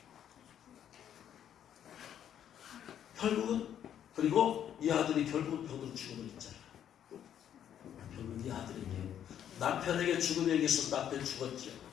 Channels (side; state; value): right; quieter; 9.8 dB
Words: 결국은, 그리고 이 아들이 결국은 병으로 죽음을 했잖아. 결국은 이 아들에게, 남편에게 죽음에 의해서 남편 죽었죠.